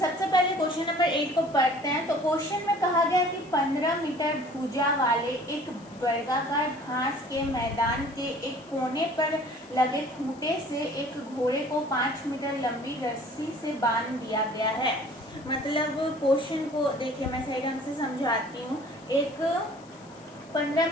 पहले क्वेश्चन नंबर 8 को पढ़ते हैं। तो क्वेश्चन में कहा गया कि 15 मीटर भुजा वाले एक वर्गाकार घास के मैदान के एक कोने पर लगे खूंटे से एक घोड़े को 5 मीटर लंबी रस्सी से बांध दिया गया है। मतलब क्वेश्चन को देखिए, मैं सही ढंग से समझाती हूँ। एक 15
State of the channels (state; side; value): noise; left; hiss, 26 dB below the sound